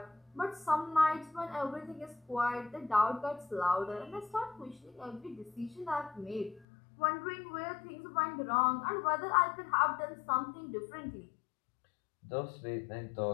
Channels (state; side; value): drops out; right; at 6.7 s